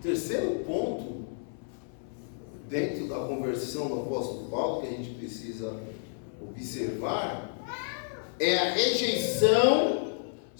Terceiro ponto, dentro da conversão do apóstolo Paulo, que a gente precisa observar, é a rejeição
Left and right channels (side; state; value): right; silent; 57 dB below the other